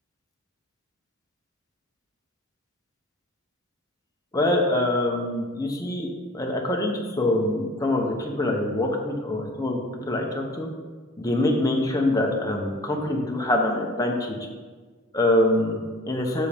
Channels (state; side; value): normal; both; correlation 0.44